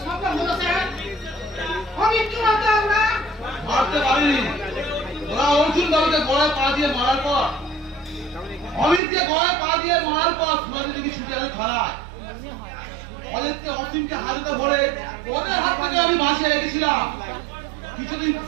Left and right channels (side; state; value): left; drops out; at 9.0 s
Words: সম্ভব হলো স্যার? আমি কি মারতাম না? মারতে পারিনি। ওরা অর্জুন বাবুকে গলায় পা দিয়ে মারার পর, অমিতকে গলায় পা দিয়ে মারার পর সুবাদি দেখি ছুটে আসে থানায়। অজিতকে অসীমকে হাতে ধরে ওদের হাত থেকে আমি বাঁচিয়ে রেখেছিলাম।